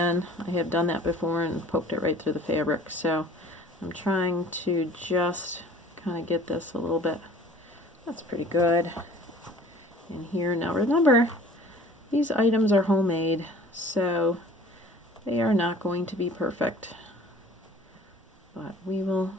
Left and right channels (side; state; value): both; normal; correlation 0.49